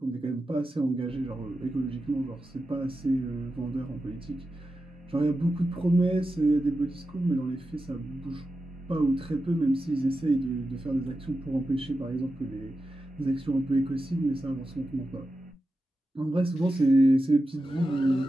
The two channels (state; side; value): normal; both; correlation 0.91